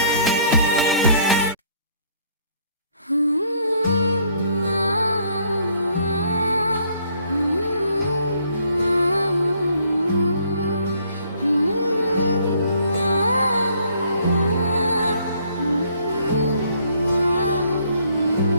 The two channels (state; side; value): inverted; both; correlation -0.64